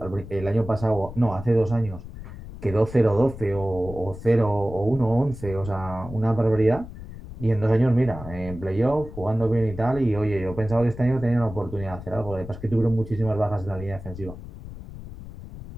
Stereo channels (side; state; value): left; noise; rumble, 13 dB below the sound